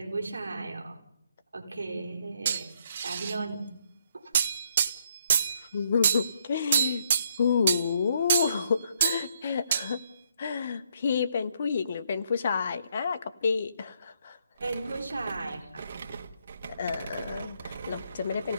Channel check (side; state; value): both; inverted; correlation -0.73